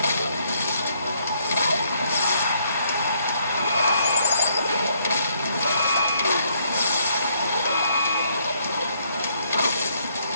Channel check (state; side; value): inverted; both; correlation -0.69